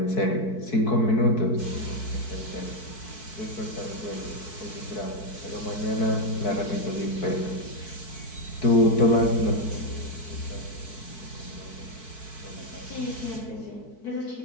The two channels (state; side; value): late; right; 4.6 ms